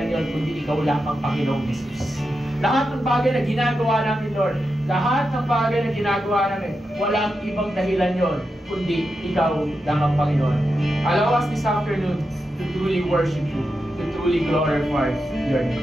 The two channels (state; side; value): normal; both; correlation 0.88